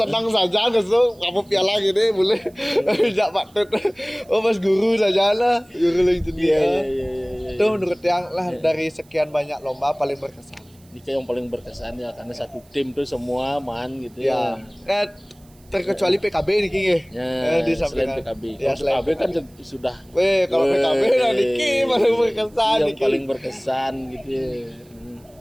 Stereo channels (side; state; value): right; noise; hiss, 30 dB below the sound